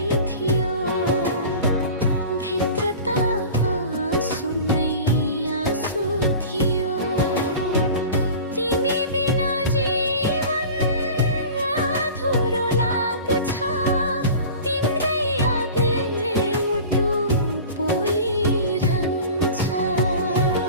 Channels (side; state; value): both; inverted; correlation -0.38